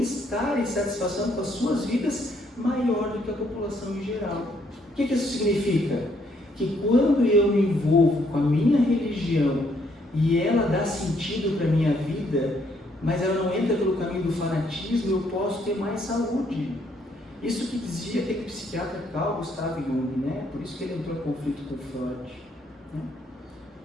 e satisfação com as suas vidas maior do que a população em geral. O que isso significa? Que quando eu me envolvo com a minha religião e ela dá sentido para a minha vida, mas ela não entra pelo caminho do fanatismo, eu posso ter mais saúde. Isso que dizia aquele psiquiatra Carl Gustav Jung, né? Por isso que ele entrou em conflito com Freud. Né?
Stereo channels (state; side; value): normal; both; correlation 0.70